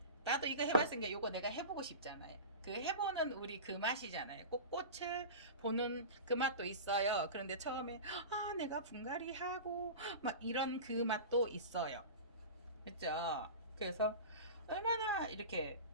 나도 이거 해봤으니까 이거 내가 해보고 싶잖아요. 그 해보는 우리 그 맛이잖아요. 꼭 꽃을 보는 그 맛도 있어요. 그런데 처음에 내가 분갈이 하고 막 이런 그 맛도 있어요. 그죠? 그래서 얼마나 이렇게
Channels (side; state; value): both; inverted; correlation -0.30